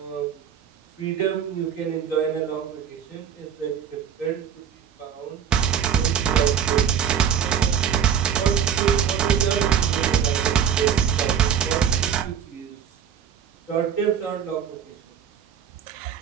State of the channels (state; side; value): quieter; left; 8.2 dB